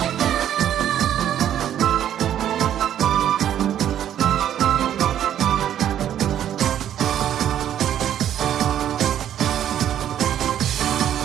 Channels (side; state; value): left; quieter; 10.6 dB